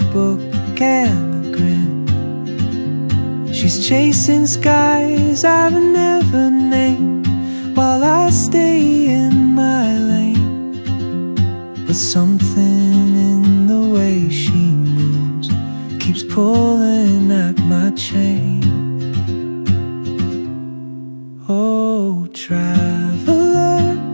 and a grin. She's chasing skies I've never named, while I stay in my lane. But something in the way she moves keeps pulling at my chain. Oh, traveler,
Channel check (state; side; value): inverted; both; correlation -1.00